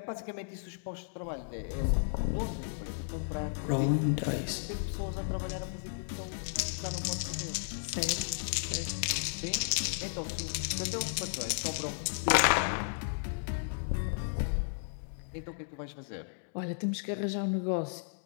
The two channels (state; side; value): silent; right; digital silence